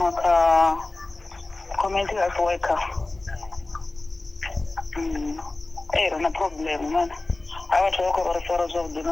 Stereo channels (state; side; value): quieter; right; 3.0 dB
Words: ka community health worker. Na problem man. Awatu wako referrals of